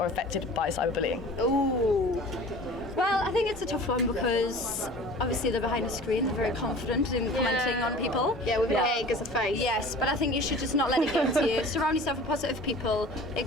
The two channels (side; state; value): both; normal; correlation 0.42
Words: affected by cyberbullying? Ooh. Well, I think it's a tough one because obviously they're behind a screen, they're very confident in commenting on people. Yeah, with an egg as a face. Yes, but I think you should just not let it get to you. Surround yourself with positive people.